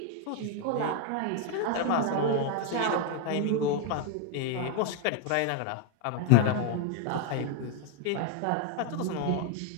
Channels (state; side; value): different; both; correlation 0.00